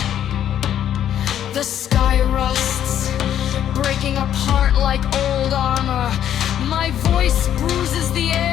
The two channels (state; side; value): quieter; right; 10.4 dB